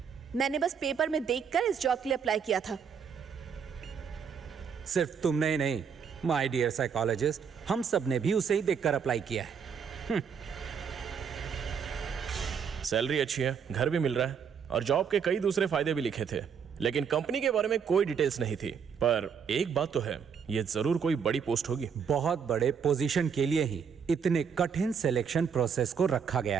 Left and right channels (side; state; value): left; quieter; 6.9 dB